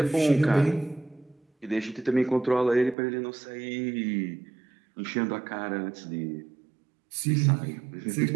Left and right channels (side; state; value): left; drops out; at 3.0 s